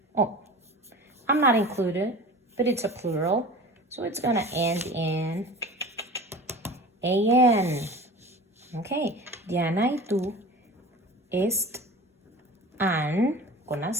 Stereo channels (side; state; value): both; normal; correlation 0.37